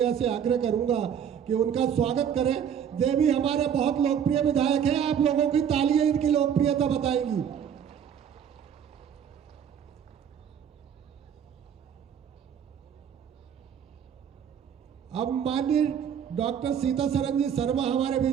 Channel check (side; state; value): left; quieter; 8.4 dB